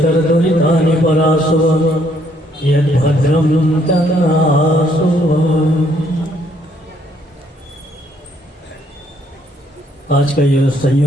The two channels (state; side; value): normal; both; correlation 0.68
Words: परासुव यद्भद्रं तन्नासु। आज का यह